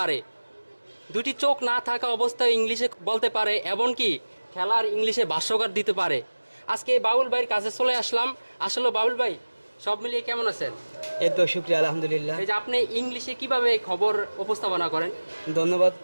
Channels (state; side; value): inverted; both; correlation -1.00